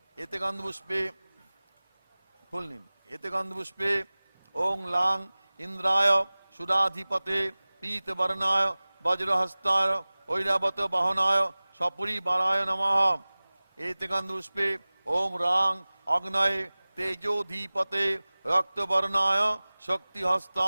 এতে গন্ধপুষ্পে ফুল নিন এতে গন্ধপুষ্পে ওং লাং ইন্দ্রায় সুরাধিপতে পীতবর্ণায় বজ্রহস্তায় ঐরাবত বাহনায় সপরিবারায় নমঃ এতে গন্ধপুষ্পে ওম রাং অগ্নয়ে তেজোধীপতে रक्तवर्णाय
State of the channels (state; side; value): inverted; both; correlation -0.99